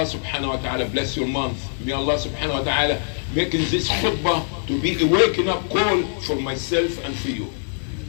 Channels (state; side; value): silent; right; digital silence